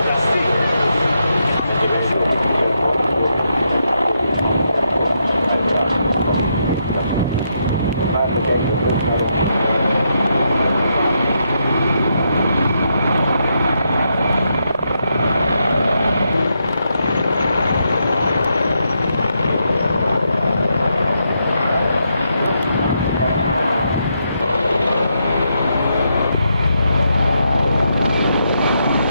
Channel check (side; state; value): both; inverted; correlation -0.80